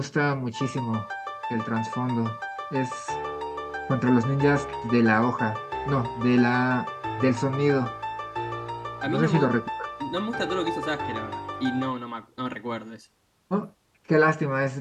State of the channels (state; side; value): identical; both; correlation 1.00